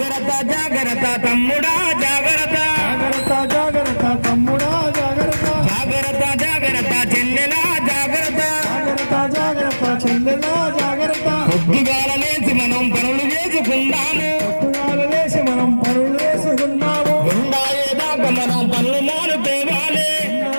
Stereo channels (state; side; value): inverted; both; correlation -1.00